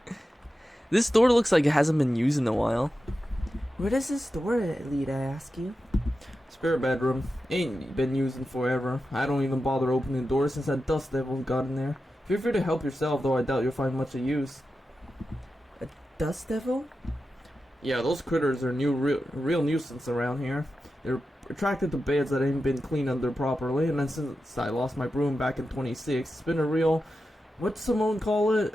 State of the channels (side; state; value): both; normal; correlation 0.91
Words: This door looks like it hasn't been used in a while. Where does this door lead, I ask you? Spare bedroom. Ain't been used in forever. I don't even bother opening doors since that dust devil got in there. Feel free to help yourself, though I doubt you'll find much of use. A dust devil? Yeah, those critters are real nuisance around here. They're attracted to beds that ain't been cleaned under properly, and then since I lost my broom back in 26, it's been a real, what's someone call